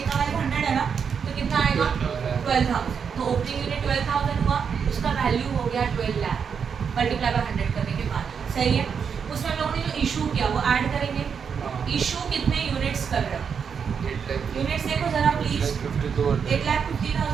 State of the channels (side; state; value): left; quieter; 6.7 dB